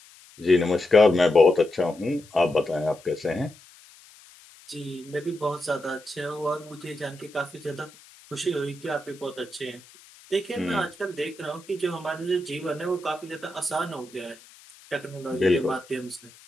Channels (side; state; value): left; noise; hiss, 23 dB below the sound